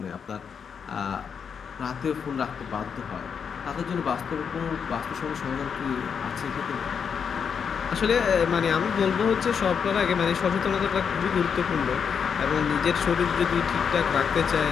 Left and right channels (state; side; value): quieter; right; 6.8 dB